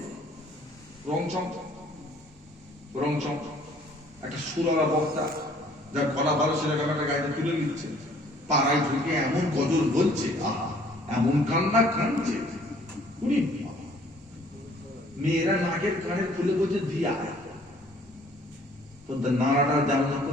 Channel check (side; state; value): both; normal; correlation 0.57